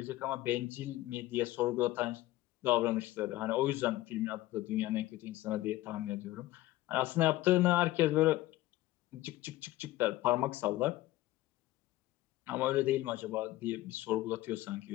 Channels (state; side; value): quieter; right; 16.9 dB